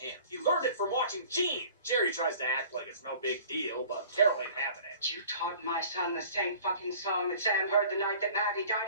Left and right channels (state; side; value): inverted; both; correlation -0.47